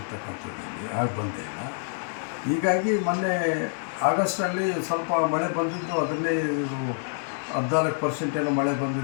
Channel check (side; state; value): right; silent; digital silence